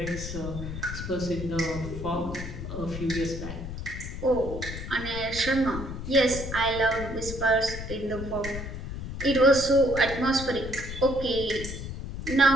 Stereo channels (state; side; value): noise; left; rumble, 7 dB below the sound